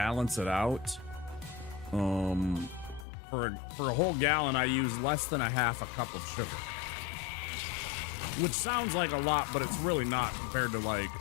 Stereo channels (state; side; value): drops out; right; at 3.1 s